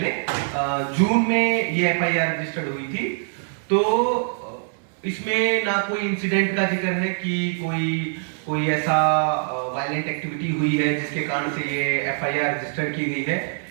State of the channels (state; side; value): silent; left; digital silence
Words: जून में ये एफआईआर रजिस्टर्ड हुई थी। तो इसमें ना कोई इंसिडेंट का जिक्र है कि कोई ऐसा वायलेंट एक्टिविटी हुई है जिसके कारण से ये एफआईआर रजिस्टर की गई है,